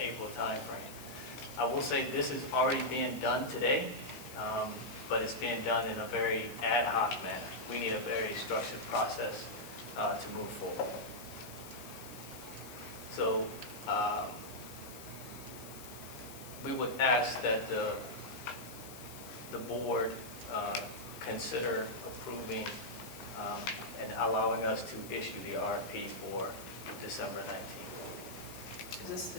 timeframe. I will say this is already being done today, but it's being done in a very ad hoc manner. We need a very structured process to move forward. So we would ask that the board consider approving and allowing us to issue the RFP for December 19th. Is this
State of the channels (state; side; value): noise; left; hiss, 15 dB below the sound